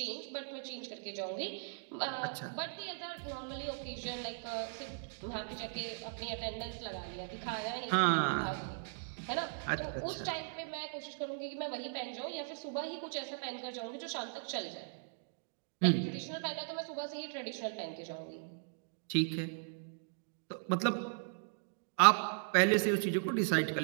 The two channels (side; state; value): left; silent; digital silence